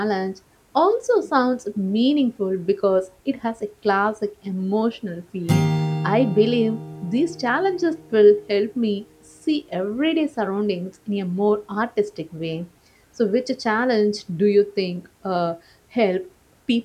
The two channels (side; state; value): both; identical; correlation 1.00